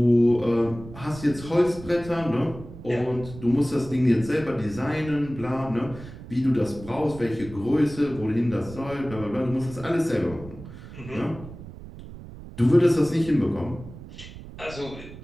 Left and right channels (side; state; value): right; noise; rumble, 15 dB below the sound